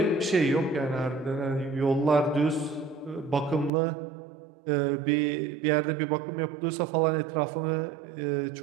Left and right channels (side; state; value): left; drops out; at 3.7 s